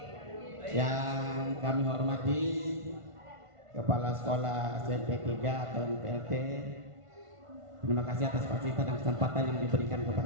Yang kami hormati Kepala Sekolah SMP 3 atau PLT, terima kasih atas fasilitas dan kesempatan yang diberikan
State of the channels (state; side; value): late; left; 1.5 ms